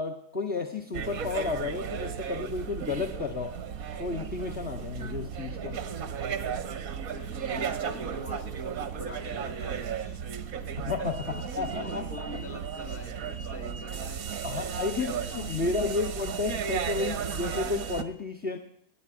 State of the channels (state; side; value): late; left; 4.2 ms